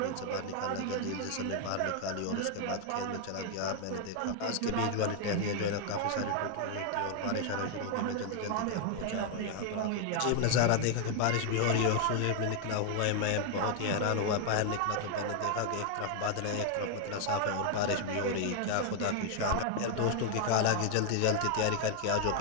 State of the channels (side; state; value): both; different; correlation 0.00